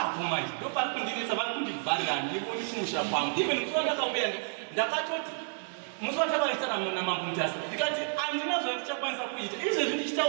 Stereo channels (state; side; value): silent; left; digital silence